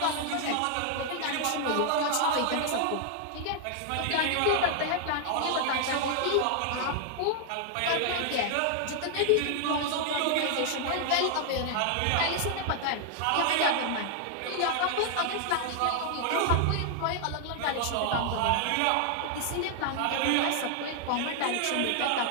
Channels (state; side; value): different; both; correlation 0.00